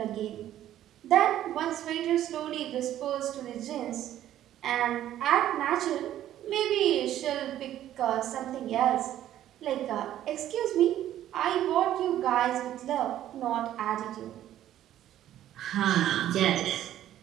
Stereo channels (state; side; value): quieter; left; 12.3 dB